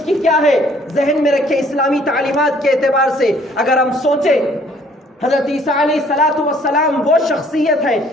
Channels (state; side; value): normal; both; correlation 0.59